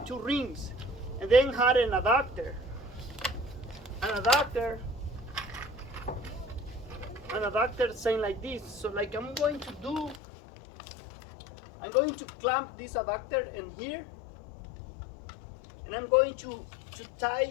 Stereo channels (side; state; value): right; drops out; at 10.2 s